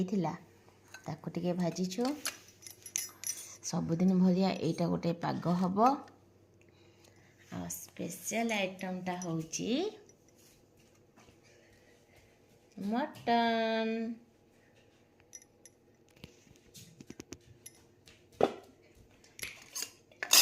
ताको टिके भाजीछु सबुदिन भलिया एटा गोटे पाग हम आ स्पेशल आइटमटा होची मटन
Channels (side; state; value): both; identical; correlation 1.00